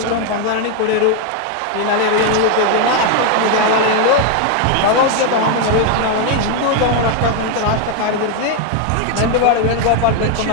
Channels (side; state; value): both; different; correlation 0.01